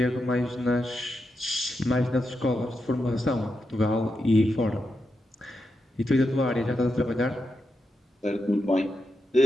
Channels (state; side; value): normal; both; correlation 0.86